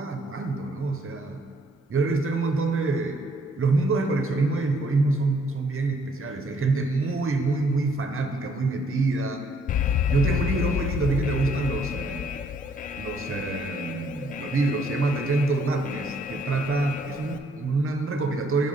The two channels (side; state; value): both; normal; correlation 0.66